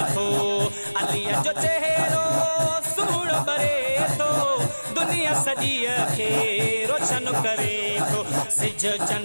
थो अली जो चेहरो सुहिणो बरे थो दुनिया सॼी खे रोशन करे थो सिज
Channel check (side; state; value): both; inverted; correlation -1.00